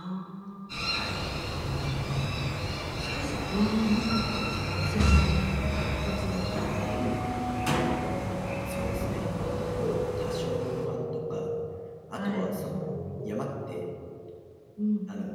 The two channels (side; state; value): both; identical; correlation 1.00